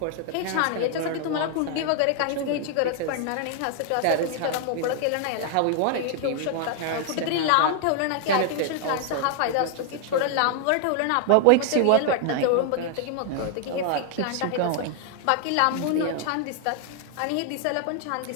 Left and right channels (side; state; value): both; different; correlation 0.00